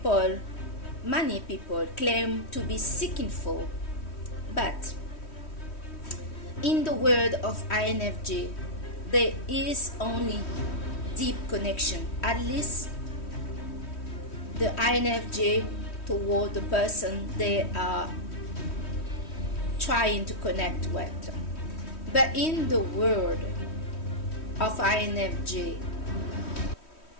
many people, claim to be seeking for. But in the word of INFJ, there is only deep connection, at least the INFJ toward the person they are trying to connect with. But in the word of INFJ,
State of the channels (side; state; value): right; late; 3.1 ms